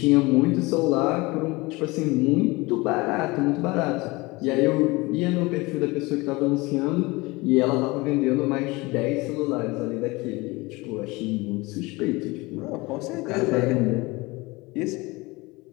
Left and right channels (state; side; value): quieter; right; 23.3 dB